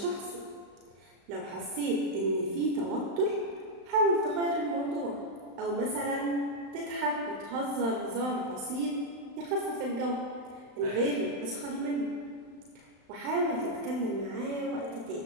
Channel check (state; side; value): late; left; 35 ms